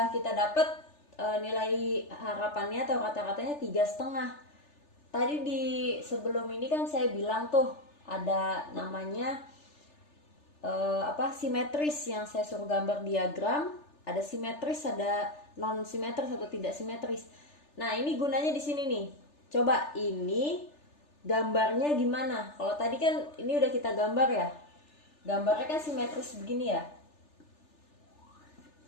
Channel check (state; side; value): late; right; 3.4 ms